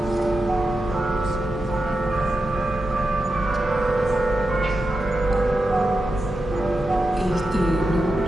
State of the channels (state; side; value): normal; both; correlation 0.89